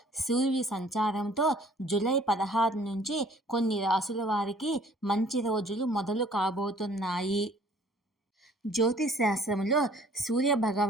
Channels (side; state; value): both; normal; correlation 0.55